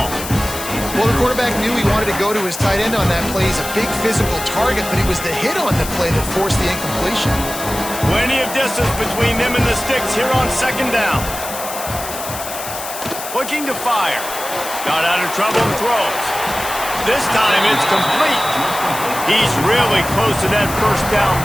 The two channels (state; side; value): noise; left; hiss, 9 dB below the sound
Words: Well, the quarterback knew he wanted to go to his tight end on that play. He's a big physical target, but it was the hit on the play that forced the incompletion. Plenty of distance between them and the sticks here on second down. Looking to fire. Got out of trouble and throws. This time it's complete. He's really close to that first down